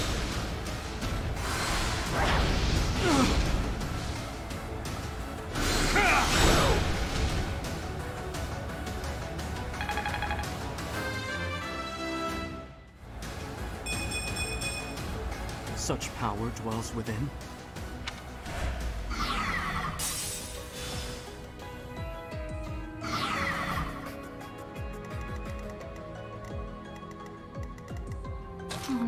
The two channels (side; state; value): both; identical; correlation 1.00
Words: Such power dwells within. Oh